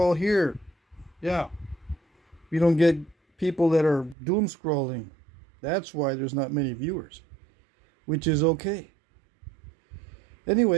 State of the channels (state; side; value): drops out; left; at 4.2 s